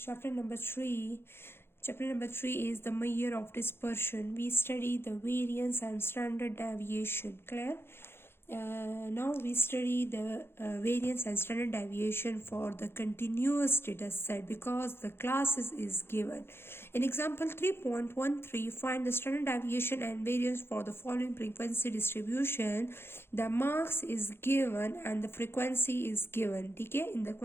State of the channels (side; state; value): right; late; 0.11 ms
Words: number 3. Chapter number 3 is the measure of dispersion. We study the variance and standard deviation. Clear? Now we study the variance and standard deviation for the continuous data set because the classes is given. In example 3.13, find the standard deviation and variance for the following frequency distribution. The marks is given and the frequency is given. ठीक है, in the